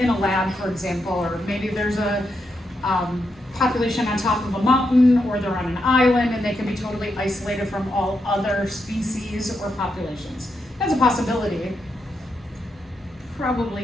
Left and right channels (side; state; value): both; normal; correlation 0.83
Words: a lab, for example, or maybe there's a population on top of a mountain, or they're on an island and they can be totally isolated from all other species or populations. That's a possibility.